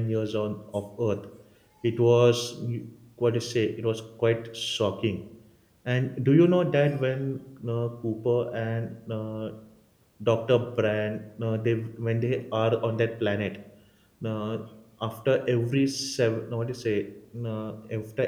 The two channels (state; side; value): identical; both; correlation 1.00